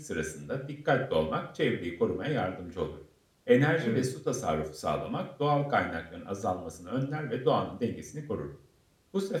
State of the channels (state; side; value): identical; both; correlation 1.00